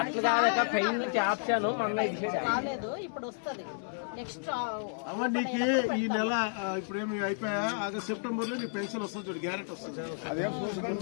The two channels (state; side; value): silent; right; digital silence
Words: అమ్మ నీకు ఈ నెల ఇప్పుడు ఏమి అయిపోయా ఆగస్ట్ సెప్టెంబర్ లో నీ పెన్షన్ వస్తుంది చూడు, గ్యారెంటీ వస్తుంది.